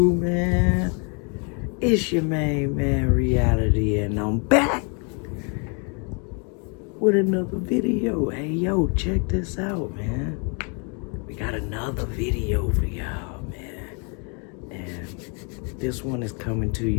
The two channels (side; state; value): right; quieter; 36.3 dB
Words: man? It's your main man, Reality, and I'm back with another video. Hey, yo, check this out, man. We got another video for y'all, man. And this one is coming to